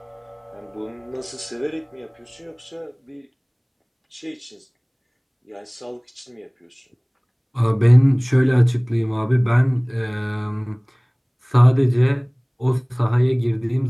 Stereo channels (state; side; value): identical; both; correlation 1.00